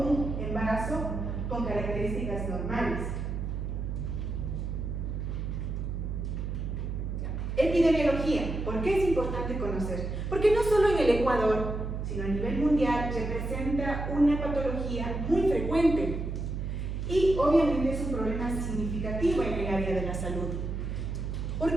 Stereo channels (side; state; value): right; noise; hum, 3 dB below the sound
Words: embarazo con características normales. Epidemiología. ¿Por qué es importante conocer? Porque no solo en el Ecuador, sino a nivel mundial, representa una patología muy frecuente y obviamente es un problema significativo en el área de la salud. ¿Por